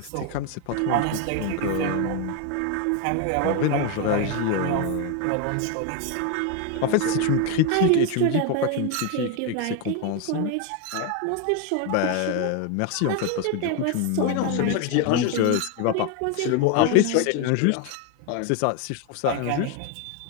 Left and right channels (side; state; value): both; different; correlation 0.01